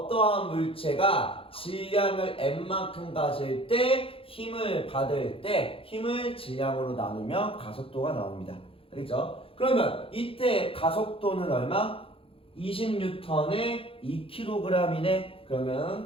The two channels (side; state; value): right; late; 0.27 ms